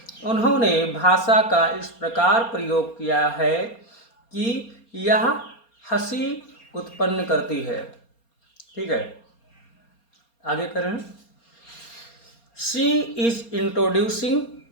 उन्होंने भाषा का इस प्रकार प्रयोग किया है कि यह हंसी उत्पन्न करती है। ठीक है, आगे करें। She is introducing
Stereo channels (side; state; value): right; late; 4.3 ms